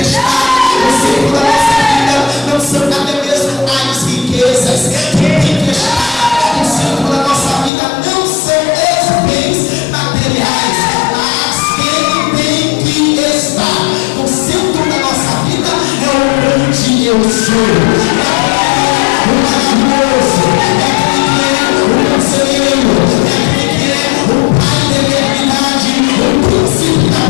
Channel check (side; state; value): right; drops out; at 7.7 s